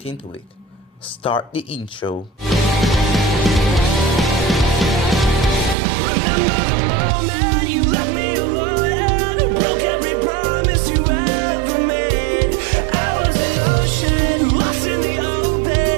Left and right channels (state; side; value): drops out; left; at 5.8 s